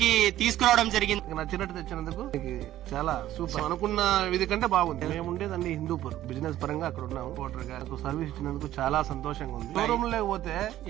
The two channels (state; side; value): quieter; left; 13.5 dB